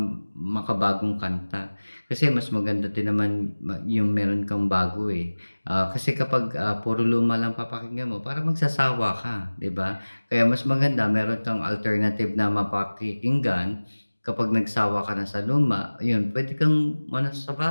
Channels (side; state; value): both; inverted; correlation -1.00